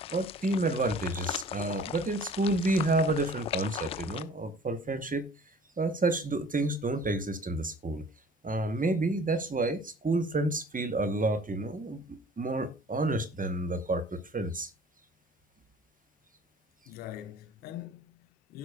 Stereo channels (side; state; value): both; normal; correlation 0.49